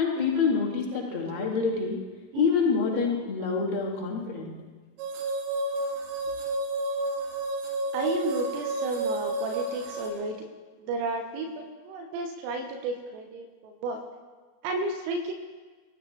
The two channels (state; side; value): late; left; 37 ms